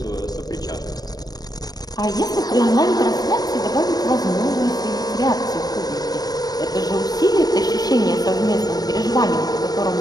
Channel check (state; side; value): late; right; 0.19 ms